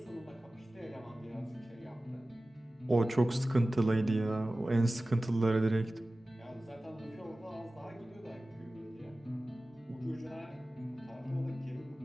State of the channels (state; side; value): normal; both; correlation 0.96